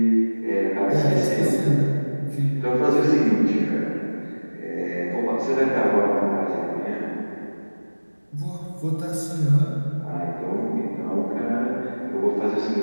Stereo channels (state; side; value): inverted; both; correlation -1.00